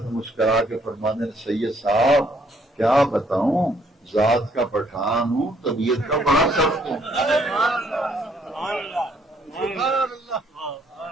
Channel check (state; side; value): normal; both; correlation 0.67